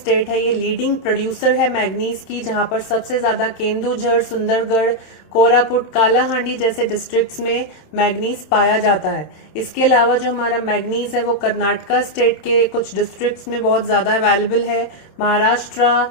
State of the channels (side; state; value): right; late; 26 ms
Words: है ये लीडिंग प्रोड्यूसर है मैग्नीज की, जहां पर सबसे ज्यादा केंदुझर, सुंदरगढ़, कोरापुट, कालाहांडी जैसे डिस्ट्रिक्ट्स में मैग्नीज पाया जाता है। इसके अलावा जो हमारा मैग्नीज है वो कर्नाटका स्टेट के कुछ डिस्ट्रिक्ट्स में बहुत ज्यादा अवेलेबल है, महाराष्ट्र